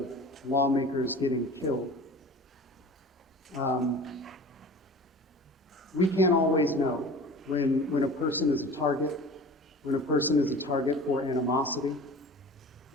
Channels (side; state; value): both; normal; correlation 0.40